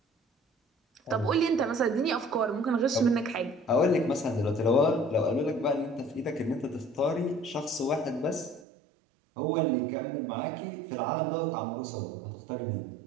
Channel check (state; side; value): drops out; left; at 8.7 s